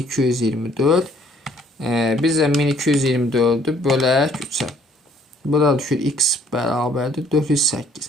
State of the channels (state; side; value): normal; both; correlation 0.61